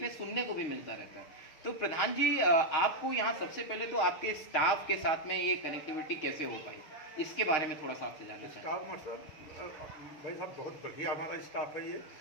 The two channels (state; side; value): late; right; 6.4 ms